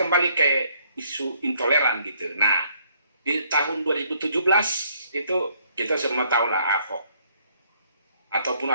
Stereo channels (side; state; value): both; inverted; correlation -0.66